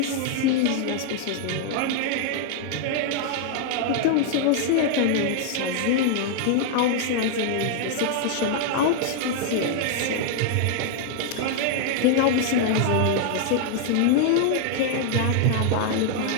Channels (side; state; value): both; different; correlation 0.00